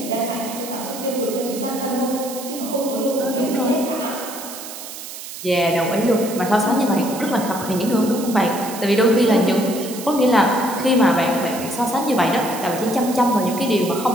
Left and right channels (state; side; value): noise; right; hiss, 11 dB below the sound